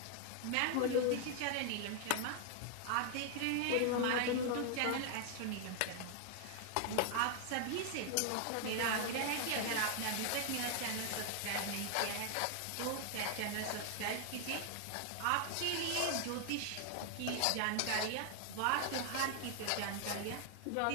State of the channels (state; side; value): different; both; correlation 0.00